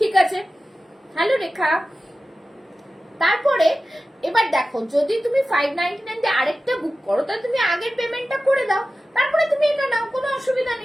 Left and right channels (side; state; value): both; normal; correlation 0.95